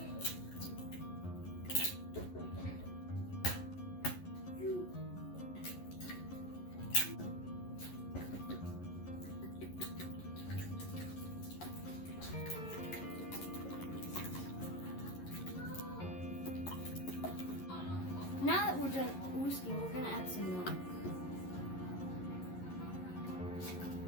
Now that we're done whisking, we're gonna add some milk.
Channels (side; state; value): right; late; 11 ms